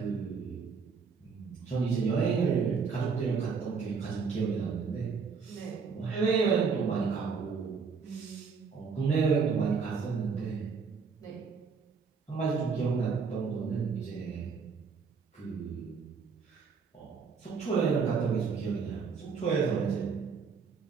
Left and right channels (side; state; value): left; quieter; 5.4 dB